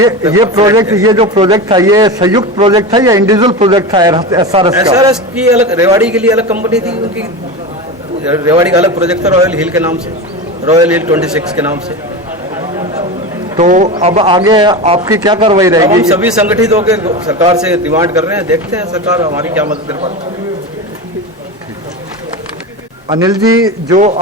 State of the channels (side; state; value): both; normal; correlation 0.24